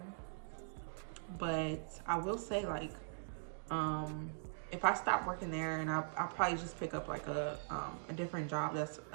But I will say, like, if I stop working there, and I'll probably just pick up like a different job that's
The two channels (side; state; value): left; silent; digital silence